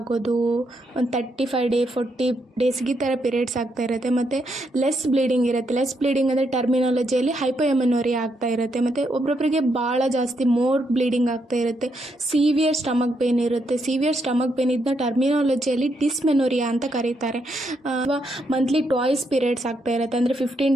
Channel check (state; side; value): normal; both; correlation 0.78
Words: ಒಂದು 35 ಡೇ 40 ಡೇಸ್ಗೆ ಈ ಥರ ಪೀರಿಯಡ್ಸ್ ಆಗ್ತಾ ಇರುತ್ತೆ, ಮತ್ತು ಲೆಸ್ ಬ್ಲೀಡಿಂಗ್ ಇರುತ್ತೆ. ಲೆಸ್ ಬ್ಲೀಡಿಂಗ್ ಅಂದರೆ ಟರ್ಮಿನಾಲಜಿಯಲ್ಲಿ ಹೈಪೋಎಮನೋರಿಯಾ ಆಗ್ತಾ ಇರುತ್ತೆ, ಮತ್ತು ಒಬ್ಬೊಬ್ಬರಿಗೆ ಭಾಳ ಜಾಸ್ತಿ ಮೋರ್ ಬ್ಲೀಡಿಂಗ್ ಆಗ್ತಾ ಇರುತ್ತೆ. ಸಿವಿಯರ್ ಸ್ಟಮಕ್ ಪೇನ್ ಇರುತ್ತೆ. ಸಿವಿಯರ್ ಸ್ಟಮಕ್ ಪೇನ್ ಇದನ್ನ ಟರ್ಮಿನಾಲಜಿಯಲ್ಲಿ ಡಿಸ್ಮೆನೋರಿಯಾ ಅಂತ ಕರೀತಾರೆ. ಮಂತ್ಲಿ ಟ್ವಾಯ್ಸ್ ಪೀರಿಯಡ್ಸ್ ಆಗ್ತಾ ಇರುತ್ತೆ, ಅಂದರೆ 15